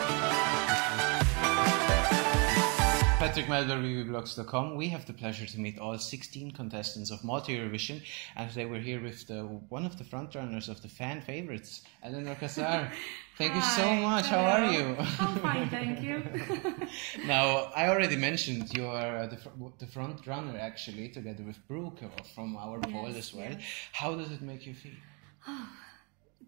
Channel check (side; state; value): left; quieter; 33.3 dB